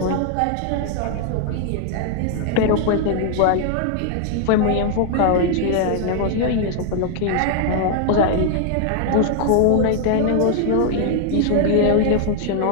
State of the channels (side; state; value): both; different; correlation 0.00